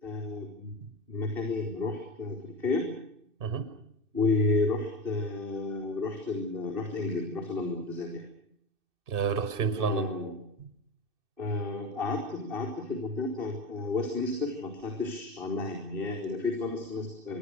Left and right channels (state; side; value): late; left; 2.6 ms